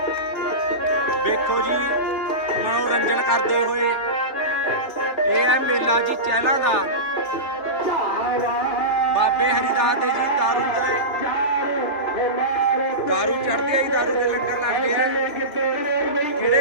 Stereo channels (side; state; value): right; late; 3.4 ms